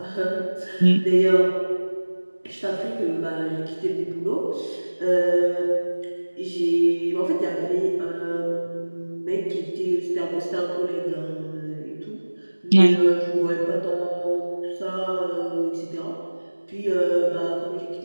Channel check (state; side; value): inverted; both; correlation -1.00